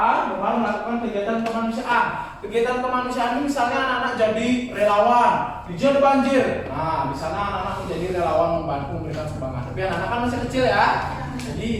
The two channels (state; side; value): identical; both; correlation 1.00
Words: dengan melakukan kegiatan kemanusiaan. Kegiatan kemanusiaan ini misalnya anak-anak jadi relawan di zona banjir. Nah, di sana anak-anak menjadi relawan membantu memberikan sumbangan. Tapi anak-anak kan masih kecil ya. Jadi